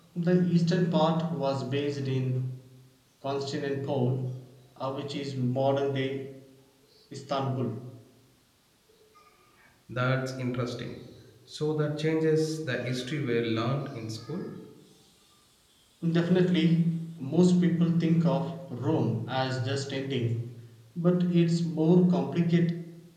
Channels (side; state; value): both; identical; correlation 1.00